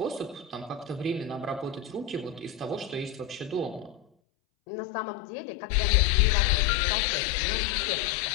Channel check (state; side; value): drops out; right; at 4.0 s